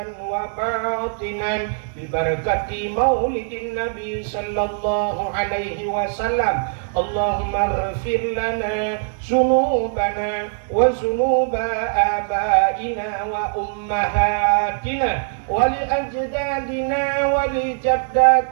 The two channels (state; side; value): silent; left; digital silence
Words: wa batinan bi barakati maulidin nabi sallallahu alaihi wasallam. Allahumma ighfir lana dzunubana wa dzunuba abaina wa ummahatina wa li ajdadina wa li